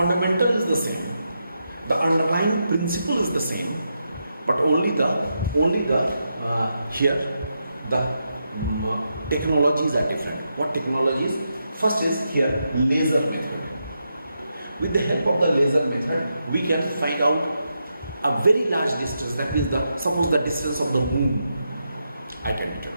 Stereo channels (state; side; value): inverted; both; correlation -0.84